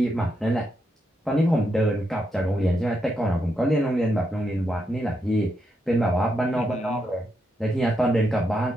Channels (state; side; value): normal; both; correlation 0.82